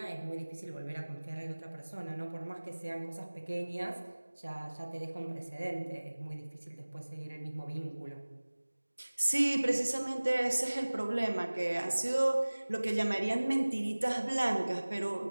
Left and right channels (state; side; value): inverted; both; correlation -1.00